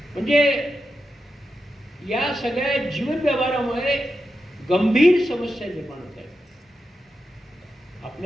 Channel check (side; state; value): both; normal; correlation 0.88